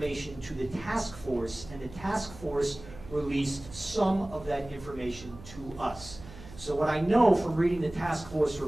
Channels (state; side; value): noise; right; hum, 17 dB below the sound